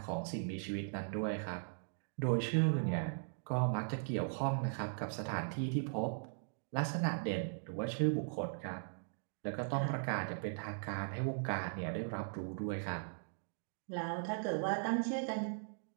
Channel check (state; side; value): silent; left; digital silence